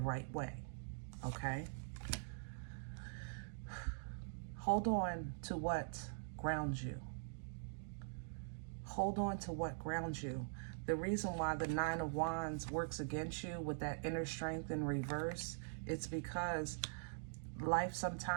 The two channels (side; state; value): left; silent; digital silence